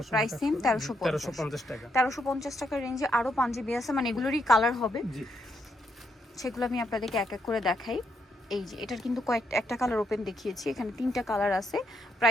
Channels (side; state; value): both; normal; correlation 0.78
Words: প্রাইস সেম 1350 টাকা। 1350 টাকার রেঞ্জে আরো পাঞ্জাবি আছে, মানে এগুলোরই কালার হবে, সেগুলো আমি আপনাদেরকে এক এক করে দেখাই। এই যে এটার কিন্তু একটা কালার ওপেন দেখিয়েছি, এখানে 3টা কালার আছে,